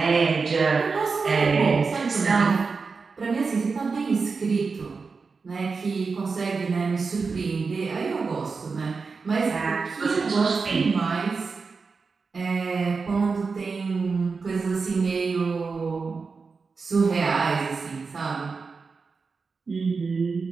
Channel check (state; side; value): quieter; left; 4.7 dB